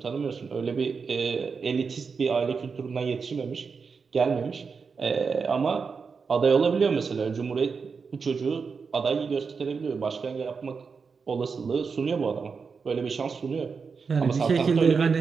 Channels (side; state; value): left; quieter; 5.3 dB